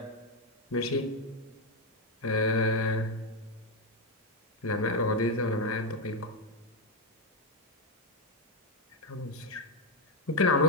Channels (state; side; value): normal; both; correlation 0.06